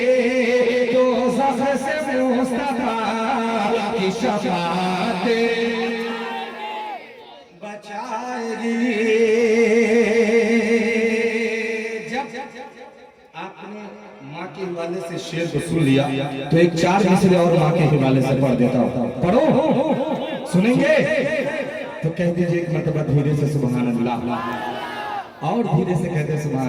दोज़ख से मुस्तफा की शफाअत बचाएगी। जब आपने माँ के हवाले से शेर को सुन लिया तो एक चार मिसरे और माँ के हवाले से पढ़ देता हूँ। पढ़ो, सुनेंगे तो कह दीजिए एक मरतबा धीरे से सुभान अल्लाह, और धीरे से कहते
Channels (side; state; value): both; identical; correlation 1.00